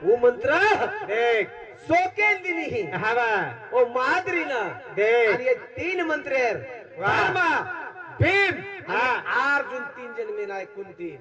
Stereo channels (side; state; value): both; identical; correlation 1.00